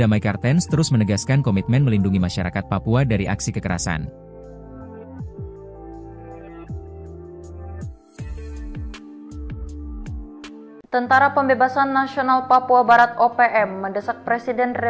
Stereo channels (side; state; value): both; identical; correlation 1.00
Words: Kartens terus menegaskan komitmen melindungi masyarakat Papua dari aksi kekerasan. Tentara Pembebasan Nasional Papua Barat OPM mendesak Presiden